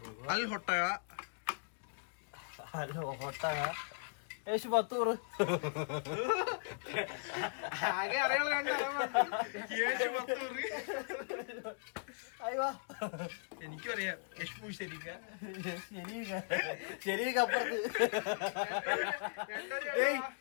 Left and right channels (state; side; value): silent; right; digital silence